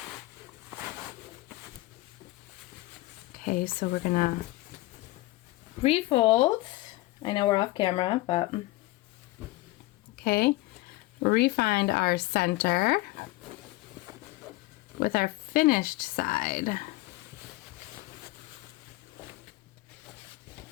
Okay, so we're gonna refold. I know we're off camera, but okay. Refind our center with our finished side.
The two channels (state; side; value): quieter; right; 19.5 dB